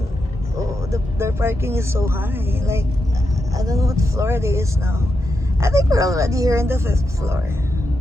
their parking is so high. Like, I don't know what floor it is now. I think we're already here in the 5th floor.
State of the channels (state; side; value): normal; both; correlation 0.86